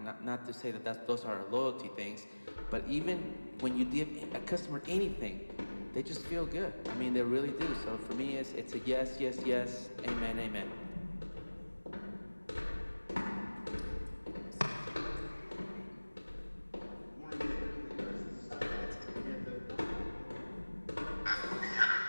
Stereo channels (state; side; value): inverted; both; correlation -1.00